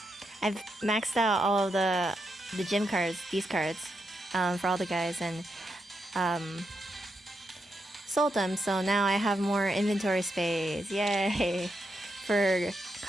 I've maxed out all of the gym cards, these cards, for all the guys, and sold them, so now I have more inventory space. Yay! For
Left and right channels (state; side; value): normal; both; correlation 0.83